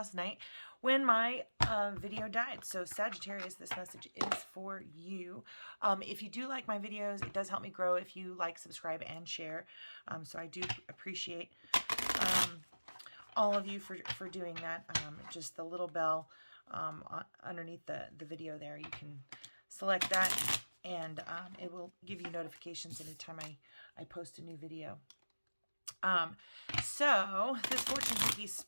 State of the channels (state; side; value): inverted; both; correlation -1.00